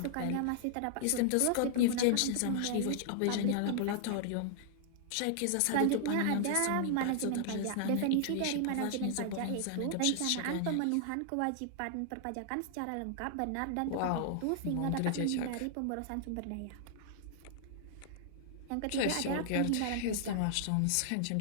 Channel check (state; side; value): different; both; correlation -0.01